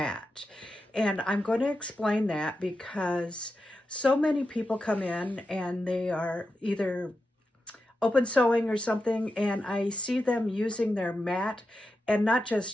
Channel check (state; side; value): normal; both; correlation 0.89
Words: And I'm going to explain that because so many people come in and they are either open sewing or something, and I see them using their mat, and not